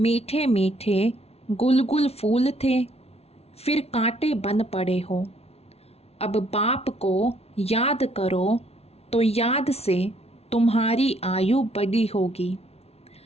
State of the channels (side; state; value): right; late; 0.30 ms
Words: मीठे गुलगुल फूल थे, फिर कांटे बन पड़े हो। अब बाप को याद करो तो याद से तुम्हारी आयु बड़ी होगी,